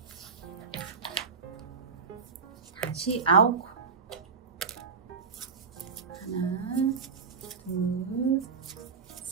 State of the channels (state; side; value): quieter; left; 5.4 dB